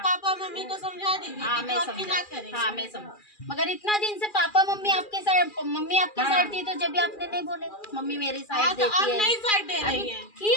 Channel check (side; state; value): right; late; 2.4 ms